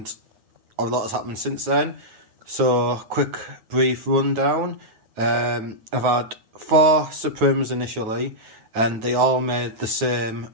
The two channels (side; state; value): left; late; 9.1 ms